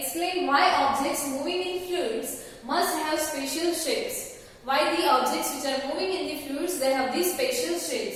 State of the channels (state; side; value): identical; both; correlation 1.00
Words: why objects moving in fluids must have special shapes. Why the objects which are moving in the fluids, they have these special